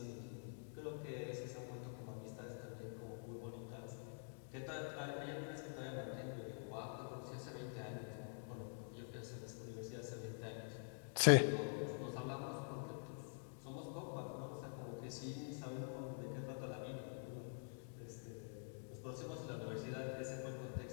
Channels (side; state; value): right; silent; digital silence